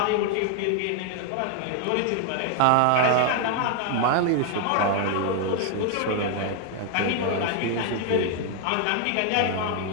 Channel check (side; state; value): both; different; correlation 0.00